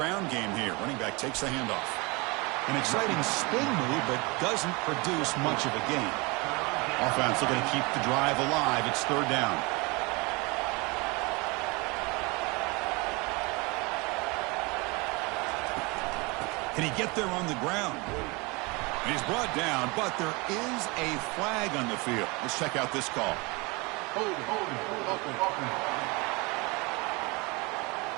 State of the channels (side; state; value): left; quieter; 26.9 dB